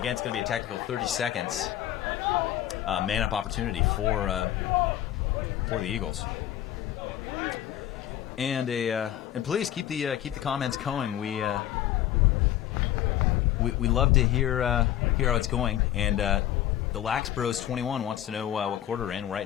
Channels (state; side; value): quieter; right; 12.4 dB